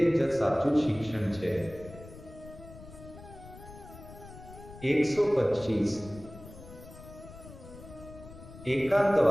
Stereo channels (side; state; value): left; noise; rumble, 17 dB below the sound